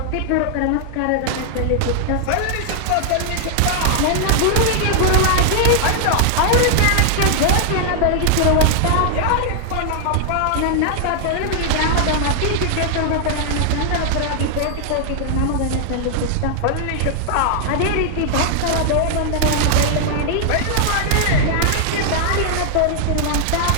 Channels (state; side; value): different; both; correlation -0.01